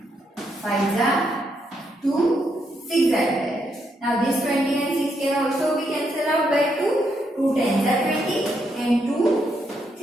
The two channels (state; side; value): normal; both; correlation 0.78